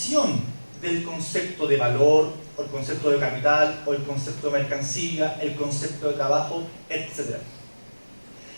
del concepto de valor, o el concepto de capital, o el concepto de mercancía, el concepto de trabajo, etc.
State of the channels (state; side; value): inverted; both; correlation -1.00